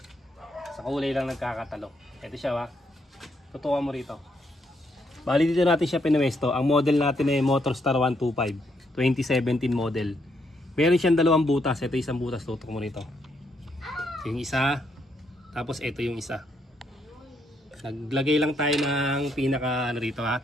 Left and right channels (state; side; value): normal; both; correlation 0.75